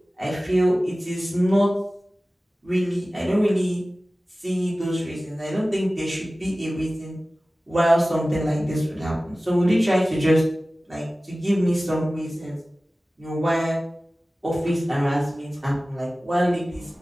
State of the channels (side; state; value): both; normal; correlation 0.97